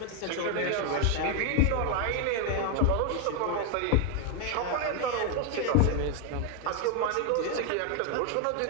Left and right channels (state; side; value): different; both; correlation 0.01